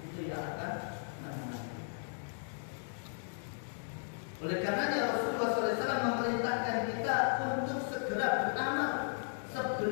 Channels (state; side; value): silent; right; digital silence